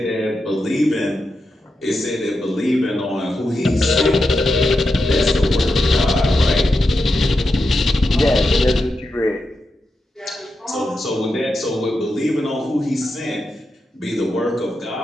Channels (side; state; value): both; normal; correlation 0.88